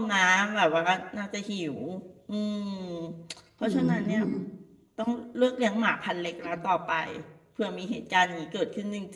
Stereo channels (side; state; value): both; identical; correlation 1.00